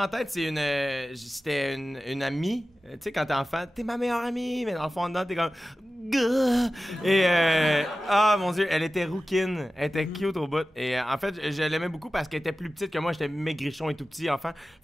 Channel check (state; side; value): normal; both; correlation 0.95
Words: tête, c'était une amie. Tu sais, quand t'es enfant, t'es ma meilleure amie, mais dans le fond, dedans, t'es comme... Et, mon Dieu, elle était rouquine. Elle était cute au bout. Et en fait, je l'aimais beaucoup parce qu'elle était plus petite que moi. J'étais maigrichon et tout petit enfant.